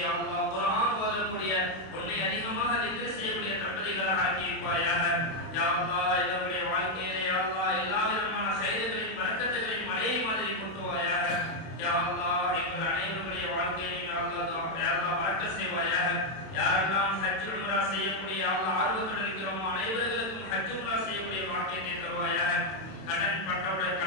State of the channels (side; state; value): right; late; 32 ms